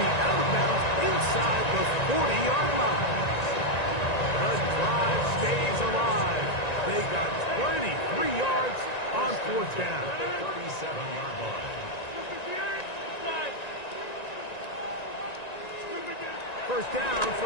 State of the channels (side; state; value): right; late; 1.9 ms